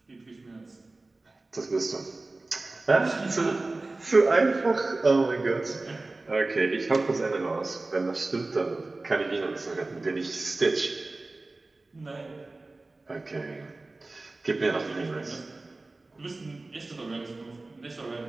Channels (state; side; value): quieter; left; 3.2 dB